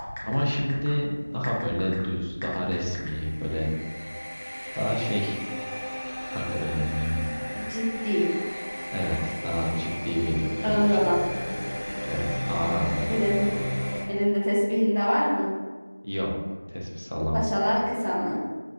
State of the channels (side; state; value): both; inverted; correlation -1.00